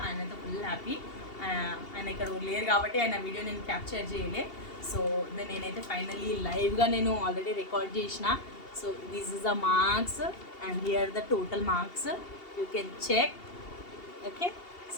ఆయనతో ఫుల్ హ్యాపీ. ఆయన ఇక్కడ లేరు కాబట్టి ఆయన వీడియో నేను క్యాప్చర్ చేయలే. సో నేనైతే ఫైనల్లీ లైవ్గా నేను ఆల్రెడీ రికార్డ్ చేసిన. So this is the marks and here the total marks, you can check. Okay,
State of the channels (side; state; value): right; late; 2.8 ms